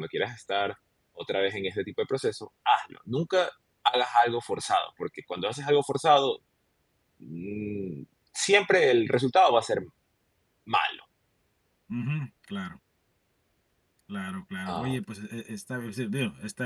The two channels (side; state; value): both; identical; correlation 1.00